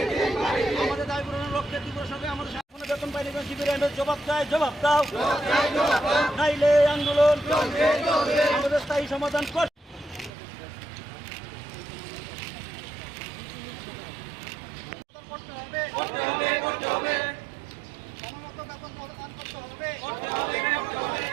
আমাদের দাবি পূরণের লক্ষ্যে তীব্র সরকার আমাদের সামনে বেতন পাইনি কেন? শিবিরের জবাব চাই, জবাব দাও। নাইলে আন্দোলন আমাদের স্থায়ী সমাধান কর। করতে হবে, করতে হবে, করতে হবে। সময়মতো বেতন প্রদান করতে হবে, করতে হবে, করতে হবে।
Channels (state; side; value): drops out; left; at 10.3 s